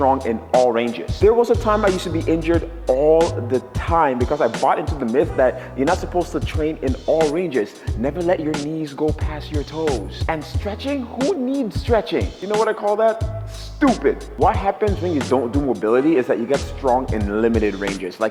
in all ranges. There was a time I used to be injured all the time because I bought into the myth that you're not supposed to train in all ranges. Never let your knees go past your toes. And stretching? Who needs stretching? You know what I call that? Stupid. What happens when you don't do mobility is that you get strong in limited ranges.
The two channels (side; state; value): both; identical; correlation 1.00